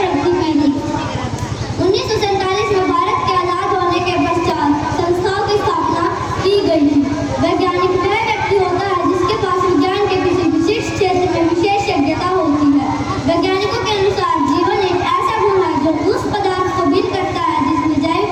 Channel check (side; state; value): both; identical; correlation 1.00